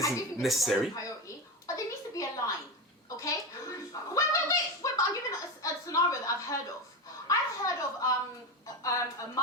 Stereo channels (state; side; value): normal; both; correlation 0.18